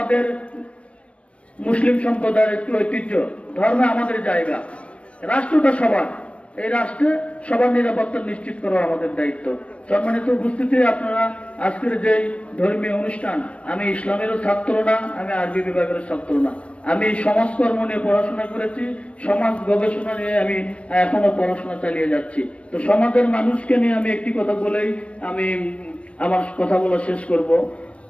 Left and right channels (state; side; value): late; right; 0.061 ms